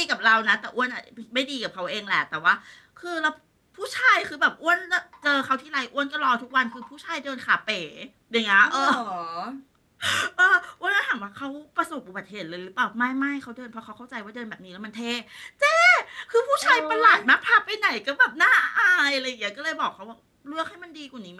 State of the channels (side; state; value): both; identical; correlation 1.00